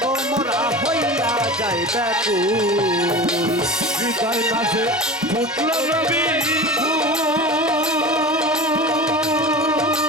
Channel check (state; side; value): normal; both; correlation 0.32